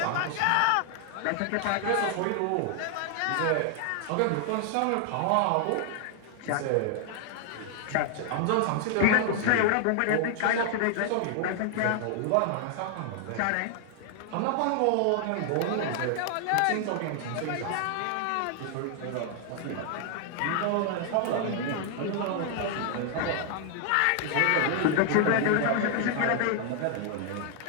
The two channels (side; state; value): both; different; correlation 0.00